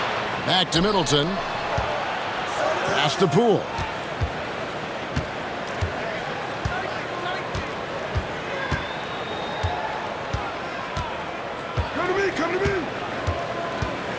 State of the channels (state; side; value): identical; both; correlation 1.00